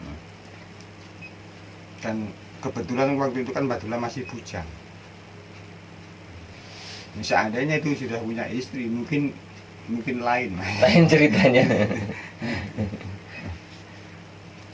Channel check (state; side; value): identical; both; correlation 1.00